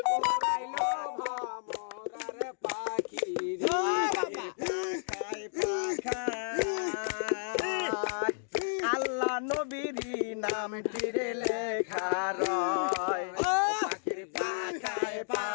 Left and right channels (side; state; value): right; silent; digital silence